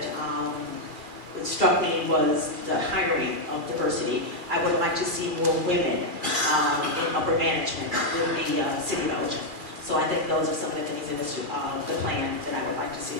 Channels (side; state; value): left; late; 2.3 ms